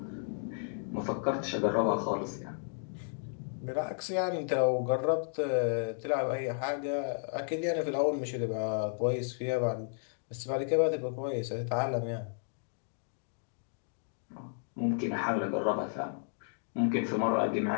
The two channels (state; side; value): silent; right; digital silence